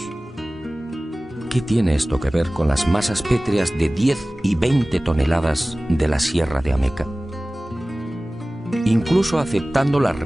¿Qué tiene esto que ver con las masas pétreas de 10 y 20 toneladas de la Sierra de Ameca? Incluso aceptando la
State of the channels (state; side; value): normal; both; correlation 0.98